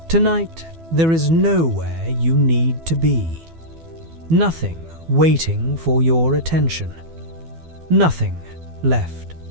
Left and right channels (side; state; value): left; late; 12 ms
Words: Tonight, there is nowhere you need to be. Nothing waiting for your attention. Nothing left